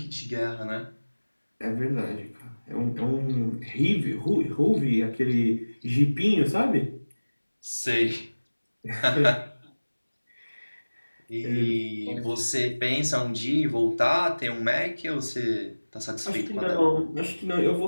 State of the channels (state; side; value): inverted; both; correlation -1.00